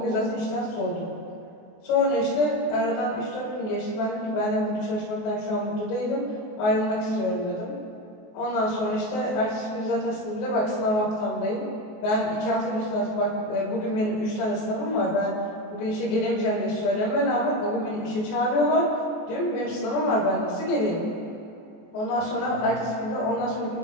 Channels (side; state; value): right; late; 23 ms